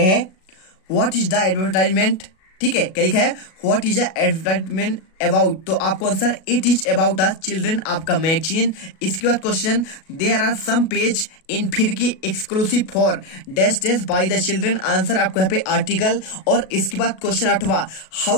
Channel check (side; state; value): right; late; 37 ms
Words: है, व्हाट इज द एडवर्टाइजमेंट। ठीक है, क्या लिखा है, व्हाट इज द एडवर्टाइजमेंट अबाउट, तो आपको आंसर इट इज अबाउट द चिल्ड्रन आपका मैगजीन। इसके बाद क्वेश्चन, देयर आर सम पेज इन फिर की एक्सक्लूसिव फॉर डैश डैश बाय द चिल्ड्रन, आंसर आपको यहाँ पे आर्टिकल। और इसके बाद क्वेश्चन 8वां,